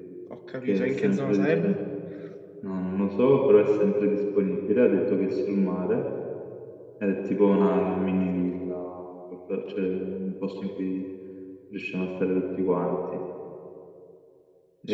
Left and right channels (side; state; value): both; identical; correlation 1.00